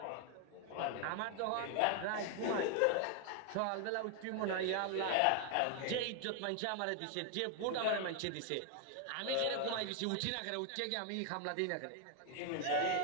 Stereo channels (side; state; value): both; different; correlation 0.00